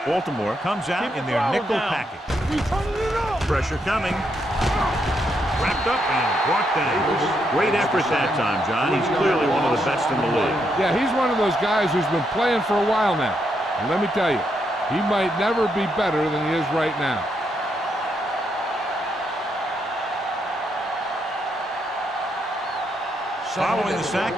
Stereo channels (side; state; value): both; normal; correlation 0.79